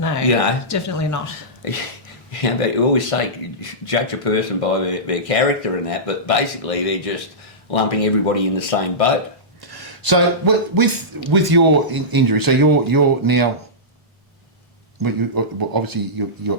You know? definitely not. Yeah, but you always say judge a person by their character and that, but basically they're just lumping everybody in the same boat. So with your injury, so you're now obviously you got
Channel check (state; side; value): normal; both; correlation -0.16